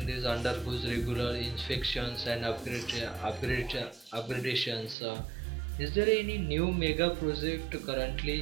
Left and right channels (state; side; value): drops out; left; at 5.0 s